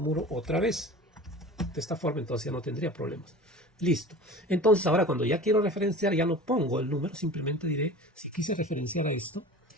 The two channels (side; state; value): both; normal; correlation 0.38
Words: otra vez. De esta forma, entonces ya no tendría problemas. Listo. Entonces ahora cuando ya quiero referenciar, ya no pongo el número, simplemente diré, si quise referenciar a esto,